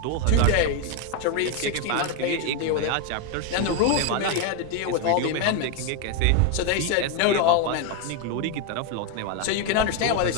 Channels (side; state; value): both; different; correlation 0.01